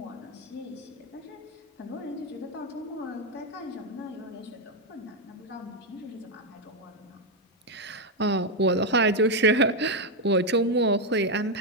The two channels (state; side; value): normal; both; correlation 0.04